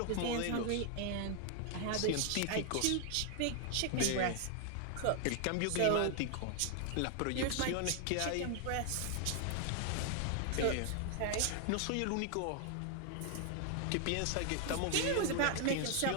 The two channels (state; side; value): different; both; correlation 0.00